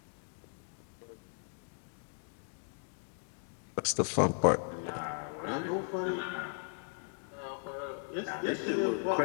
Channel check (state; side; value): silent; right; digital silence